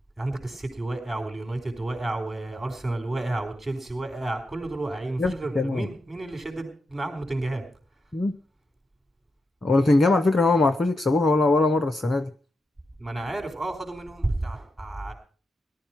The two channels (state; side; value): normal; both; correlation 0.86